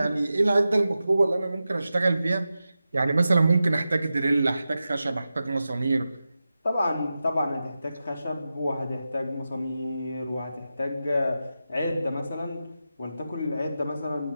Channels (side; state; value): both; inverted; correlation -0.92